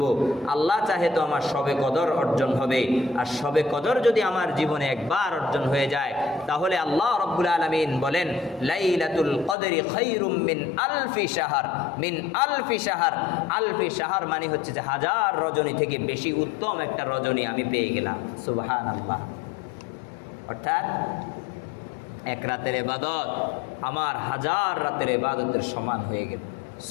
আল্লাহ চাহে তো আমার শবে কদর অর্জন হবে। আর শবে কদর যদি আমার জীবনে একবার অর্জন হয়ে যায়, তাহলে আল্লাহ রাব্বুল আলামিন বলেন লাইলাতুল কদরি খায়রুম মিন আলফি শাহর। মিন আলফি শাহর, আলফি শাহর মানে হচ্ছে যে 1000 রজনী থেকে বেশি উত্তম একটা রজনী আমি পেয়ে গেলাম। সুবহানাল্লাহ। অর্থাৎ এক রাতের ইবাদত আমার 1000 রাতের ইবাদতের সমান হয়ে গেল।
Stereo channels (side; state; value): right; drops out; at 9.6 s